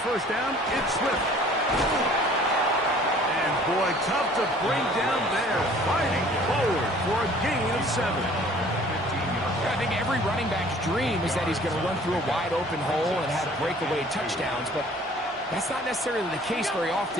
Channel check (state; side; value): normal; both; correlation 0.52